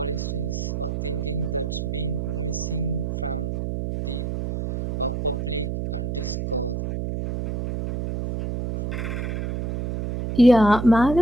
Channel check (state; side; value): noise; right; hum, 3 dB below the sound